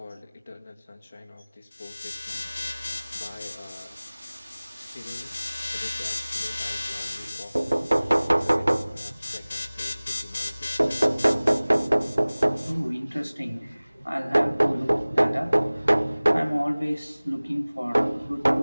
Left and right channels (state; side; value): inverted; both; correlation -0.99